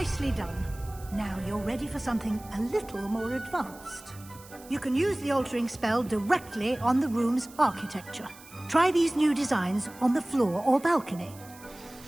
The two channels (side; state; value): right; noise; hiss, 21 dB below the sound